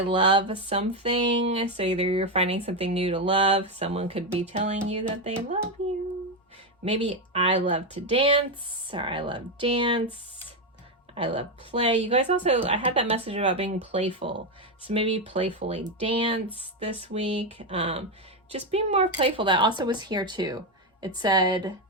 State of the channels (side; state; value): both; normal; correlation 0.08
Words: something. So either you're finding something new to love. Someone could be telling you that they love you. Maybe I love to dance, or I love dance. I love play. You guys also, I had that message about being playful. So maybe playfully dance this week. Just be more playful. That also was here too. It said,